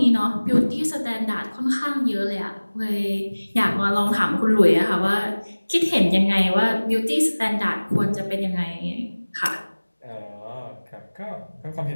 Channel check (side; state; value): both; inverted; correlation -1.00